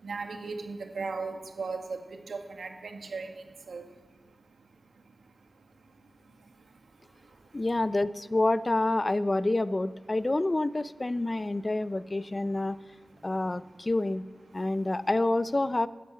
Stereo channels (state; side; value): normal; both; correlation 0.98